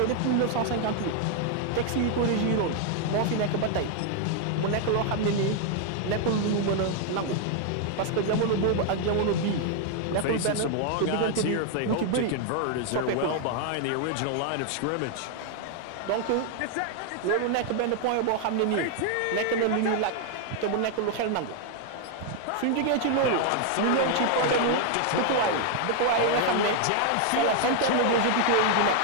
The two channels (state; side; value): different; both; correlation 0.00